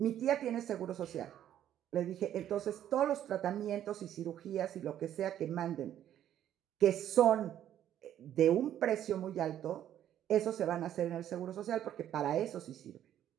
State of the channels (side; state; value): left; quieter; 11.1 dB